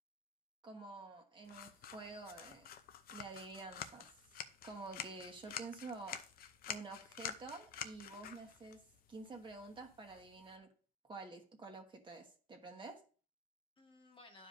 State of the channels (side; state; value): both; normal; correlation 0.26